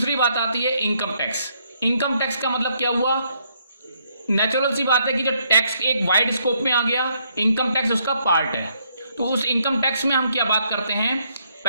बात आती है इनकम टैक्स। इनकम टैक्स का मतलब क्या हुआ? नेचुरल सी बात है कि जब टैक्स एक वाइड स्कोप में आ गया, इनकम टैक्स उसका पार्ट है। तो उस इनकम टैक्स में हम क्या बात करते हैं?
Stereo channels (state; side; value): inverted; both; correlation -0.72